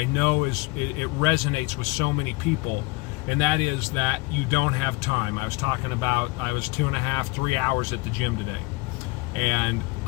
know it resonates with so many people, and that is that you don't have time. I was talking about I was 2.5, 3 hours at the gym today. And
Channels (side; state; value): right; quieter; 24.8 dB